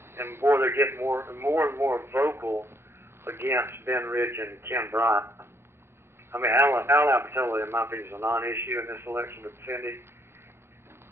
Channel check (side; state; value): left; late; 0.12 ms